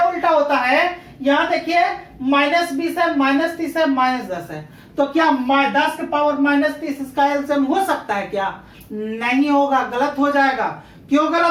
उल्टा होता है, यहां देखिए -20 है, -30 है, -10 है। तो क्या 10 के पावर -30 इसका एलसीएम हो सकता है क्या, नहीं होगा, गलत हो जाएगा। क्यों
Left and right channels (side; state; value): both; identical; correlation 1.00